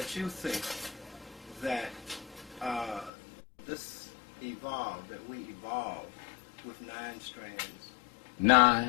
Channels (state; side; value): drops out; right; at 3.1 s